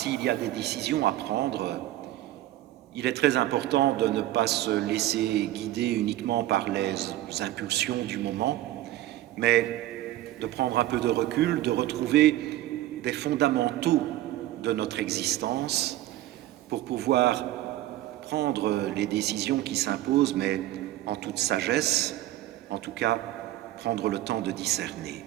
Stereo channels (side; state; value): left; quieter; 14.8 dB